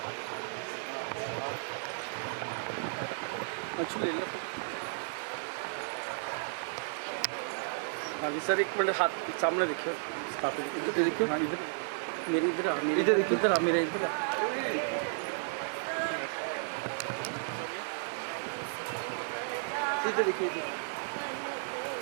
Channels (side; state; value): left; silent; digital silence